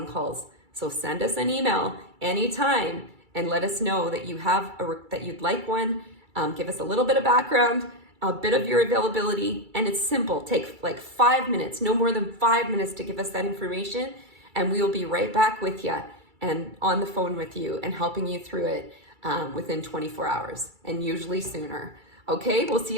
calls. So send us an email anytime and let us know that you have that you'd like one. Give us a little bit of background, a bit of your availability, and it's simple. Take 5 minutes, no more than 5 minutes to give us that information, and we will be right back with you and on the phone with you and helping you through it within 24 hours and usually sooner. Okay, we'll see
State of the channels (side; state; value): left; late; 2.3 ms